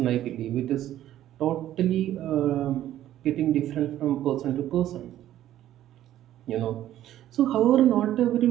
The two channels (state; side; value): quieter; left; 12.6 dB